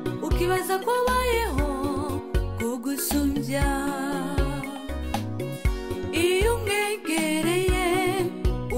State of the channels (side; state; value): both; identical; correlation 1.00